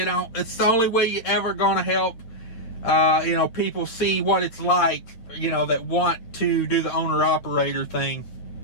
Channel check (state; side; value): late; right; 8.5 ms